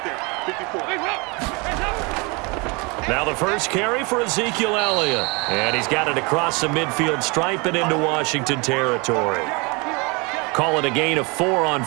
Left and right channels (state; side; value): quieter; left; 28.7 dB